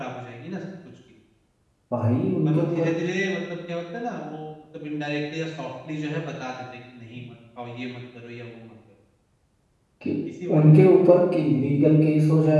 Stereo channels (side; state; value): both; identical; correlation 1.00